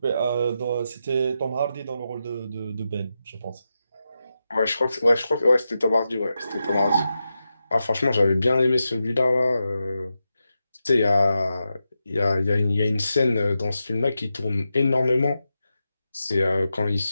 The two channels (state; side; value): inverted; both; correlation -0.89